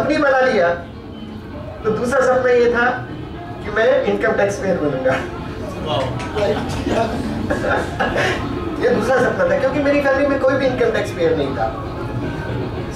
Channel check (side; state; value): both; identical; correlation 1.00